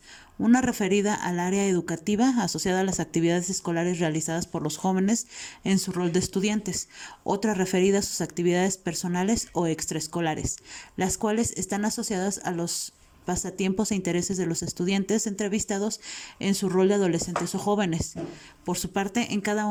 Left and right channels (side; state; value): both; identical; correlation 1.00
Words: Una referida al área educativa asociada a las actividades escolares realizadas por los jóvenes en su rol de estudiantes. Otra referida a sus actividades personales o extraescolares, las cuales están asociadas a los pasatiempos e intereses de los estudiantes entrevistados en su rol de adolescentes o jóvenes. Por su parte, en cada